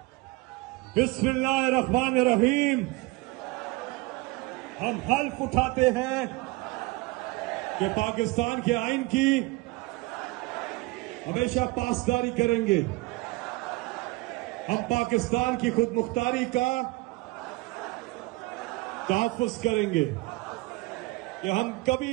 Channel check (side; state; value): left; quieter; 22.5 dB